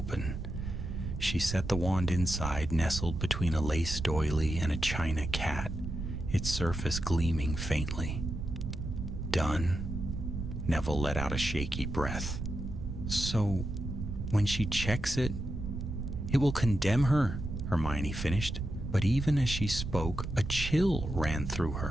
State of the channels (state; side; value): noise; right; rumble, 5 dB below the sound